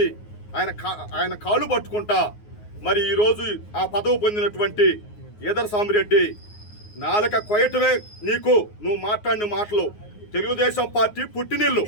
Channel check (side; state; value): right; late; 9.5 ms